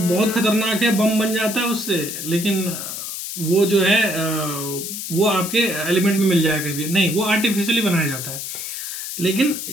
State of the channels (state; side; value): noise; left; hiss, 6 dB below the sound